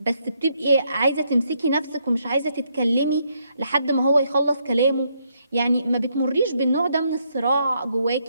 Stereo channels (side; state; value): both; inverted; correlation -0.75